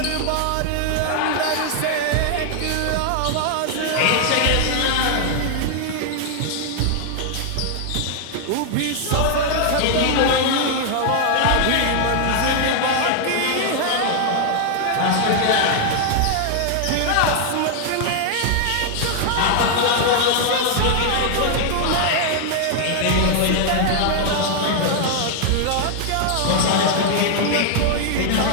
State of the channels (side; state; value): both; different; correlation 0.00